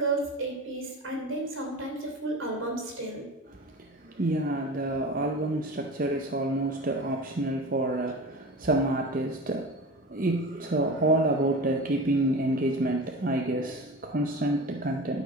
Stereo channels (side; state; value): both; normal; correlation 0.32